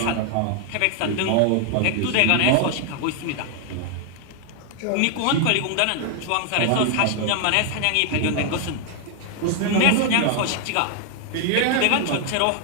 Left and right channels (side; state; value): both; different; correlation 0.00